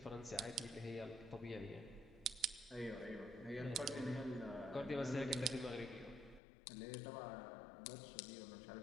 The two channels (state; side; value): drops out; right; at 6.4 s